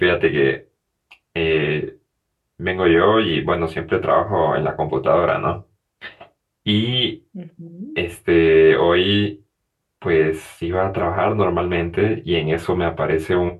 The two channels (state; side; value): identical; both; correlation 1.00